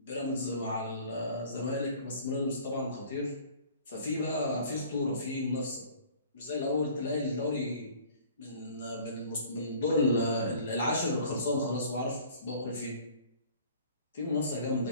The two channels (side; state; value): both; inverted; correlation -0.50